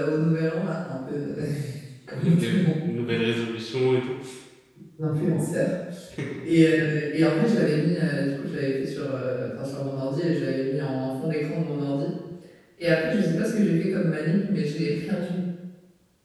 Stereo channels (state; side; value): identical; both; correlation 1.00